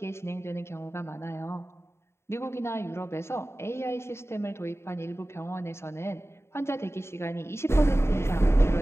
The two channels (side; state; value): right; late; 0.13 ms